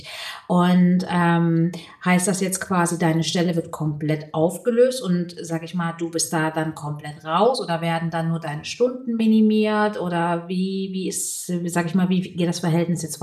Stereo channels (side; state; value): both; identical; correlation 1.00